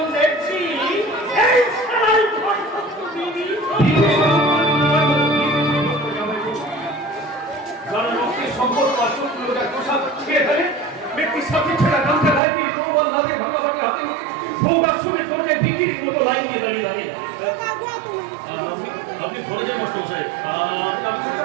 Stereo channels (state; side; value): drops out; left; at 12.4 s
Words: দেখছি এই সারাই ঘর সত্য বিবি যারা রক্তের সম্পর্ক আর শত্রুতার পোশাক ছিঁড়ে ফেলে, ব্যক্তির সাথে ছেঁড়া গামছা গায়ে দিয়ে তরোয়াল হাতে ভাগাভাগি হাতে সৌগাত শুনে চলছে বিক্রির মতো লাইন দিয়ে দাঁড়িয়ে দাঁড়িয়ে। আপনি ঘরে যান মাস্টার সাহেব,